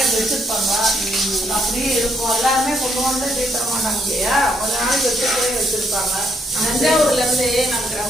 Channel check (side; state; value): both; normal; correlation 0.73